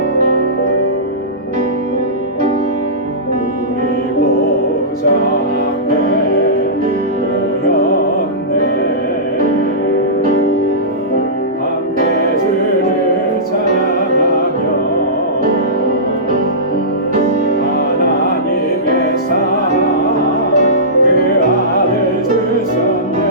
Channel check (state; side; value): normal; both; correlation -0.19